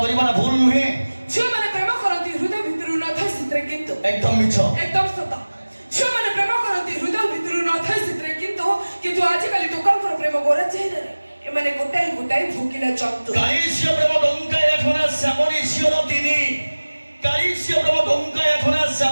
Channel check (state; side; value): inverted; both; correlation -1.00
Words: କରିବାଟା ଭୁଲ ନୁହେଁ, ଝିଅମାନେ ପ୍ରେମ କରନ୍ତି ହୃଦୟ ଭିତରୁ ନଥାଏ ସେଥିରେ, କିନ୍ତୁ একদম মিছ। একদম সତ। ଝିଅମାନେ ପ୍ରେମ କରନ୍ତି ହୃଦୟ ଭିତରୁ ନଥାଏ ସେଥିରେ, କିନ୍ତୁ ଆଜିକାଲି ଟୋକାଙ୍କର ପ୍ରେମ ଗୋରା ଚେହେରାରେ। ଏମାନେ ଗୋଟାଏ ଗୋଟାଏ ଭୋକିଲା ଜନ୍ତୁ। কালিশীয় প্রেম ডঙ্কা এখনা শ্যামনে ছিল তিনি, কালিশীয় প্রেম ডঙ্কা এখনা